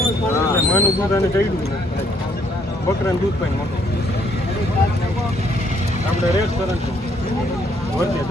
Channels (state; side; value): normal; both; correlation 0.67